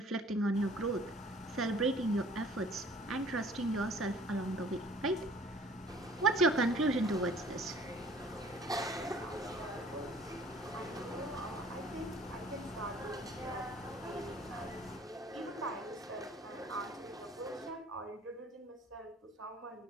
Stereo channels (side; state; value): both; normal; correlation 0.52